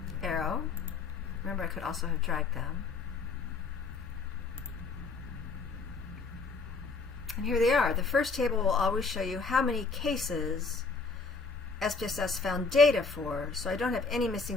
Arrow. Remember, I could also have dragged them. And here they are. The first table will always show you how many cases SPSS found data for. So I don't have any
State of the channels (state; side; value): quieter; right; 4.3 dB